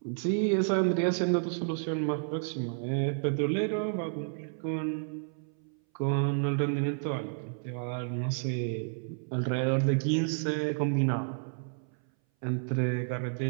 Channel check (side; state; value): left; silent; 57 dB below the other